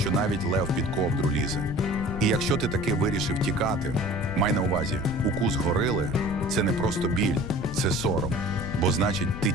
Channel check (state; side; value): noise; left; rumble, 7 dB below the sound